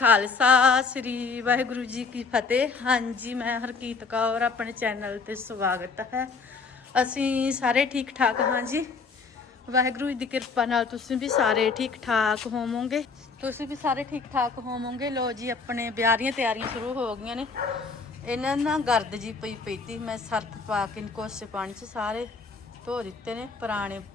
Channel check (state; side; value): quieter; right; 4.6 dB